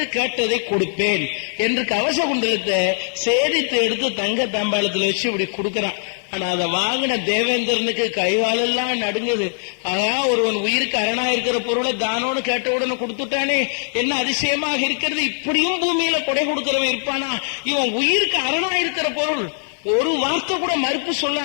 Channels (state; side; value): silent; right; digital silence